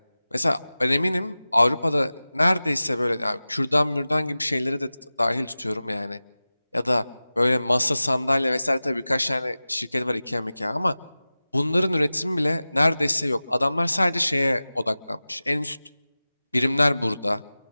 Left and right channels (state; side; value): inverted; both; correlation -0.97